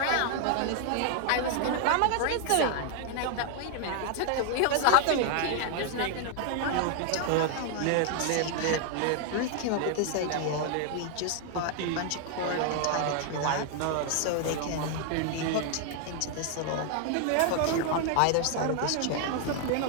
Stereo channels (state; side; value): different; both; correlation 0.00